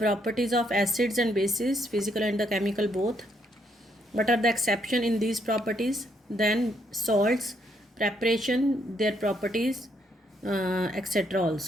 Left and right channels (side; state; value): both; normal; correlation 0.73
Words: of acids and bases, physical and the chemical both. What are the exception in these properties? Then salts, preparation, their properties, etc.